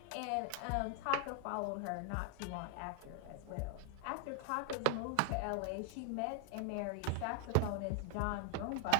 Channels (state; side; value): different; both; correlation 0.00